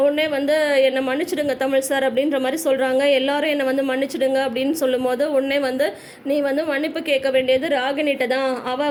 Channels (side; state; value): both; identical; correlation 1.00